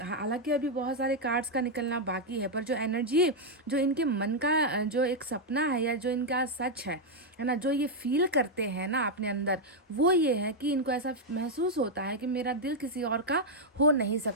हालांकि अभी बहुत सारे कार्ड्स का निकलना बाकी है, पर जो एनर्जी, जो इनके मन का जो एक सपना है या जो इनका सच है ना, जो ये फील करते हैं ना अपने अंदर, वो ये है कि इनको ऐसा महसूस होता है कि मेरा दिल किसी और का हो नहीं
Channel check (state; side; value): normal; both; correlation -0.01